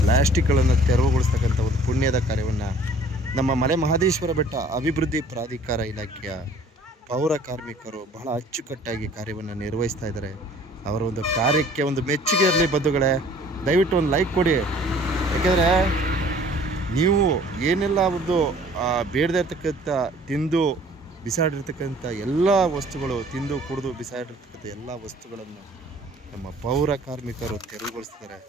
ಪ್ಲಾಸ್ಟಿಕ್ಗಳನ್ನು ತೆರವುಗೊಳಿಸ್ತಕ್ಕಂಥ ಒಂದು ಪುಣ್ಯದ ಕಾರ್ಯವನ್ನು ನಮ್ಮ ಮಲೆ ಮಹದೇಶ್ವರ ಬೆಟ್ಟ ಅಭಿವೃದ್ಧಿ ಪ್ರಾಧಿಕಾರ ಇಲಾಖೆಯ ಪೌರ ಕಾರ್ಮಿಕರು ಬಹಳ ಅಚ್ಚುಕಟ್ಟಾಗಿ ಕಾರ್ಯವನ್ನು ನಿರ್ವಹಿಸ್ತಾ ಇದ್ದಾರೆ. ಅವರ ಒಂದು ಕಾರ್ಯಕ್ಕೆ ಒಂದು ಮೆಚ್ಚುಗೆ ಇರಲಿ ಬಂಧುಗಳೇ. ದಯವಿಟ್ಟು ಒಂದು ಲೈಕ್ ಕೊಡಿ. ಯಾಕೆಂದರೆ ನೀವು ಏನೆಲ್ಲ ಒಂದು ಬೇಡದೇ ಇರ್ತಕ್ಕಂಥ ತಿಂದು ಬಿಸಾಡಿರ್ತಕ್ಕಂಥ ಎಲ್ಲ ವಸ್ತುಗಳು, ತಿಂದು ಕುಡಿದು ಬಿಸಾಡಿರ್ತಕ್ಕಂಥ ಎಲ್ಲ ವಸ್ತುಗಳನ್ನು ನಮ್ಮ ಪೌರ ಕಾರ್ಮಿಕರು ತೆರವುಗೊಳಿಸ್ತಾರೆ.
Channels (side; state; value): both; normal; correlation 0.53